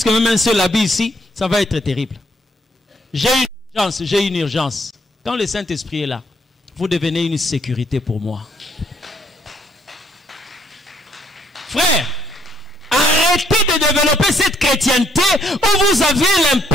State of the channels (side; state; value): both; normal; correlation 0.69